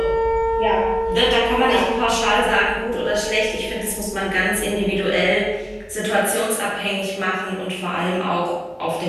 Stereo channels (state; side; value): identical; both; correlation 1.00